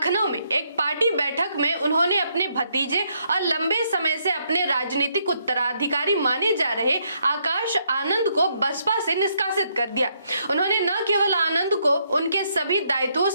में एक पार्टी बैठक में उन्होंने अपने भतीजे और लंबे समय से अपने राजनीतिक उत्तराधिकारी माने जा रहे आकाश आनंद को बसपा से निष्कासित कर दिया। उन्होंने न केवल आनंद को उनके सभी दायित्वों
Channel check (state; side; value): inverted; both; correlation -0.74